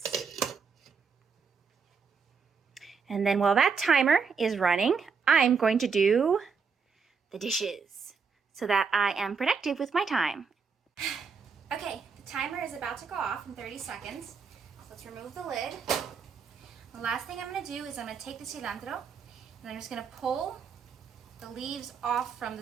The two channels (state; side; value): quieter; left; 5.6 dB